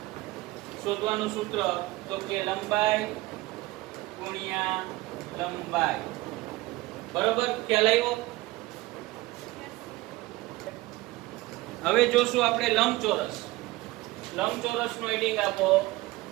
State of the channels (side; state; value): left; quieter; 19.6 dB